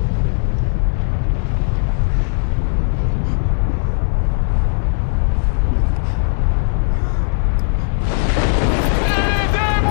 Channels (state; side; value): silent; right; 68 dB below the other